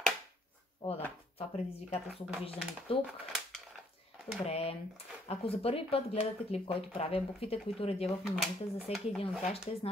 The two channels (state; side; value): normal; both; correlation 0.66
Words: Да, това предизвикателство го виждам и тук. Добре. Ако за първи път гледате клип, който правя, буквите, които редя в момента, за всеки един от тях ще